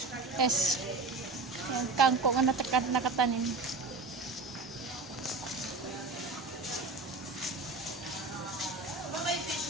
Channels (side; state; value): left; quieter; 3.7 dB